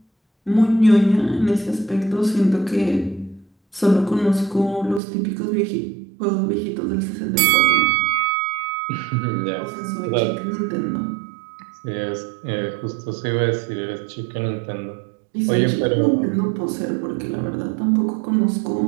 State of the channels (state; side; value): drops out; left; at 5.0 s